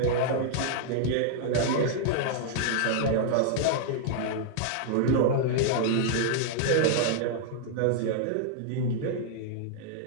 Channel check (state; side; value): different; both; correlation -0.01